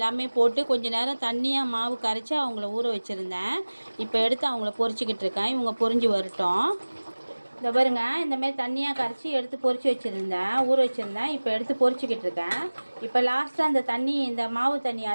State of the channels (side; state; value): both; inverted; correlation -1.00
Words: போட்டு கொஞ்ச நேரம் தண்ணியாக மாவு கரைச்சி அவங்கள ஊற வச்சுருந்தேன். இப்போ எடுத்து அவங்கள பொரிச்சிக்கிட்டு இருக்கேன். இவங்க பொரிஞ்சு வரட்டும். இந்த பாருங்க இந்தமாரி தண்ணியாக கரைச்சி எடுத்து பொரிச்சு வச்சுருந்தேன், ஊற வச்சுருந்தேன். இப்போ எடுத்து பொரிச்சிக்கிட்டு இருக்கேன். இப்போ லாஸ்ட்டாக அந்த தண்ணி, இந்த மாவு தண்ணி